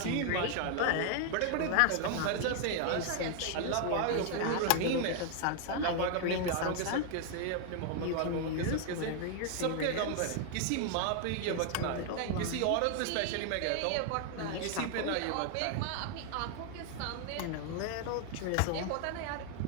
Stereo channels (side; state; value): both; different; correlation 0.00